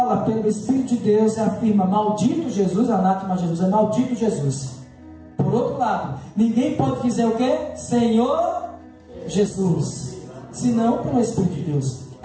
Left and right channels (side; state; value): both; identical; correlation 1.00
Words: pelo Espírito de Deus e afirma maldito Jesus, anátema Jesus, é maldito Jesus. Por outro lado, ninguém pode dizer o que? Senhor Jesus, senão pelo Espírito de Deus.